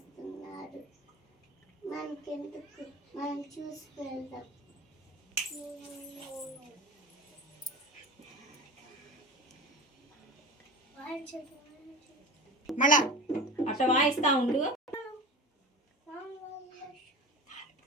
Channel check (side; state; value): both; normal; correlation 0.31